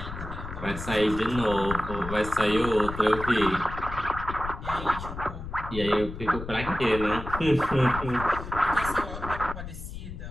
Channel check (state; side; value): noise; left; rumble, 9 dB below the sound